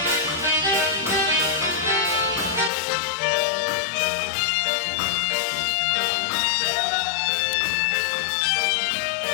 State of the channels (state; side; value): drops out; right; at 2.7 s